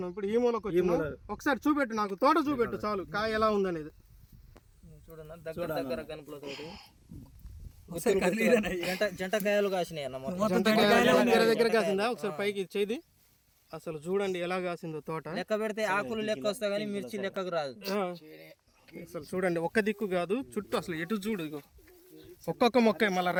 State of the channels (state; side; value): identical; both; correlation 1.00